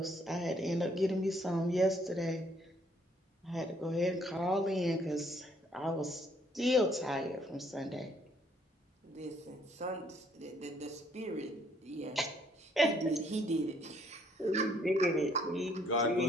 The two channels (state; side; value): normal; both; correlation 0.66